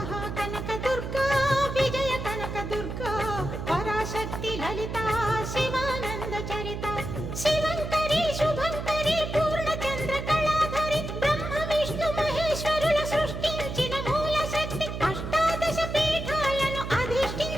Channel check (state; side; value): noise; right; hum, 6 dB below the sound